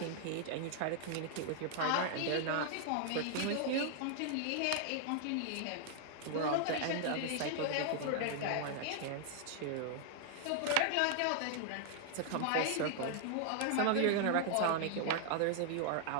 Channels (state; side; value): different; both; correlation 0.00